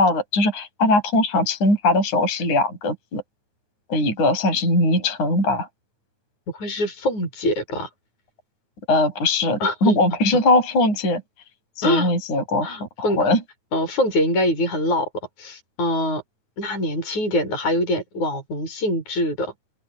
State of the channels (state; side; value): late; right; 9.6 ms